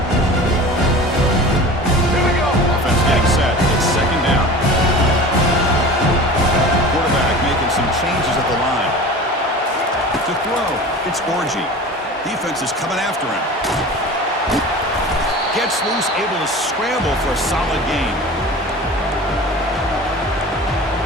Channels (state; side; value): normal; both; correlation 0.37